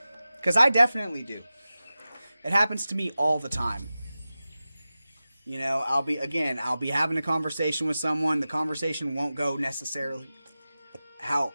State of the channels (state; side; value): inverted; both; correlation -0.95